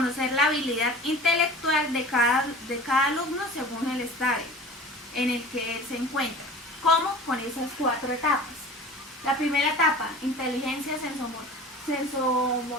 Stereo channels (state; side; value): normal; both; correlation 0.40